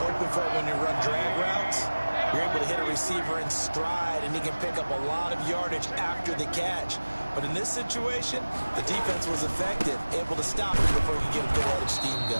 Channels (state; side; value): inverted; both; correlation -1.00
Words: hoping for when you run drag routes, you're able to hit a receiver in stride, and he can pick up a lot of yardage after the catch. But in this situation, the defense was effective, able to stop him before he could get a good head of steam